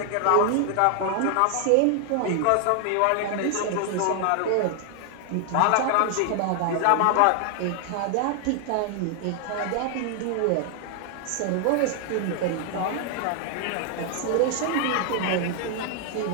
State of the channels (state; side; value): different; both; correlation 0.00